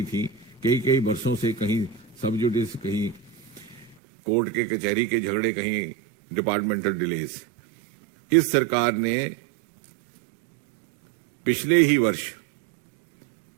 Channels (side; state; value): left; drops out; at 4.0 s